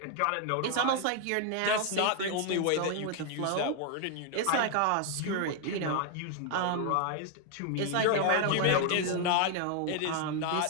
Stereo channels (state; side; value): different; both; correlation 0.00